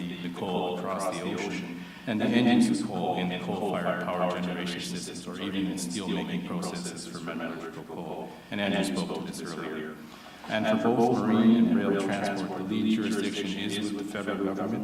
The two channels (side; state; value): both; identical; correlation 1.00